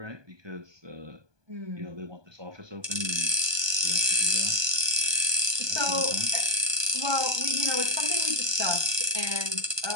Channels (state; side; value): late; left; 1.2 ms